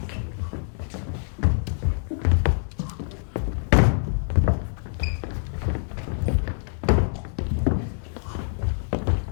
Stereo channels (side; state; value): right; silent; digital silence